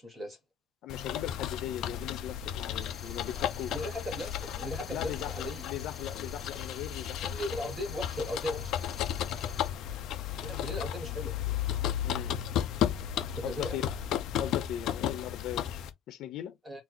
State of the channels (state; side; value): quieter; right; 8.2 dB